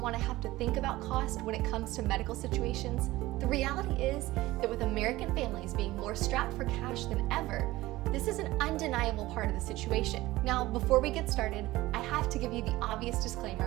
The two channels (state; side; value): quieter; left; 18.0 dB